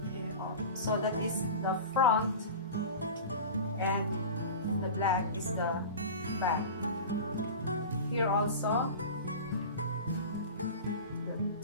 So that is the front, and the black is the back. Here also,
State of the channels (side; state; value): both; inverted; correlation -0.32